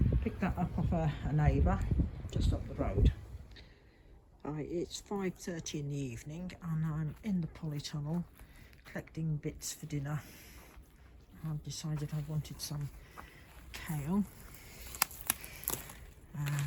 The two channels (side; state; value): both; identical; correlation 1.00